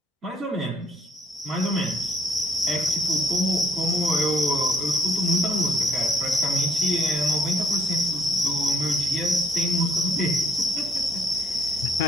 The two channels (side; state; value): both; normal; correlation 0.66